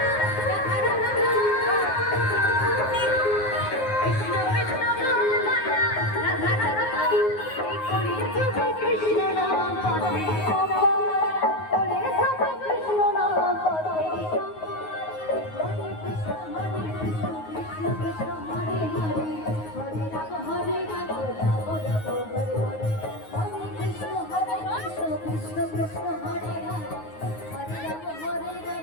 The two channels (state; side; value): late; right; 9.5 ms